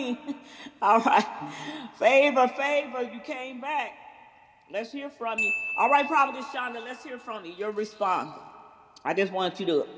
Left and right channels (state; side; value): identical; both; correlation 1.00